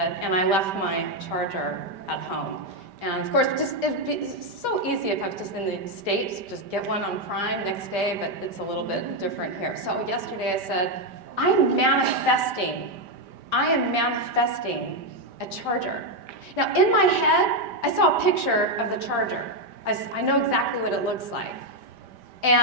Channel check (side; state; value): left; late; 5.1 ms